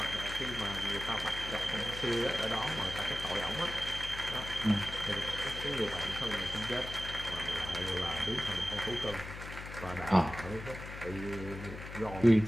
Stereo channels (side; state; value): left; noise; hum, 10 dB below the sound